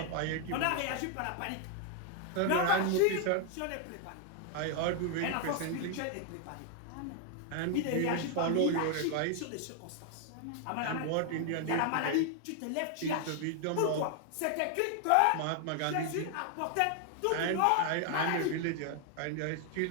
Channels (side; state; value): both; different; correlation 0.00